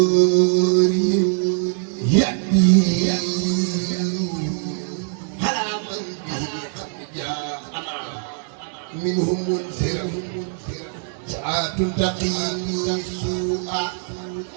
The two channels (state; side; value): silent; left; digital silence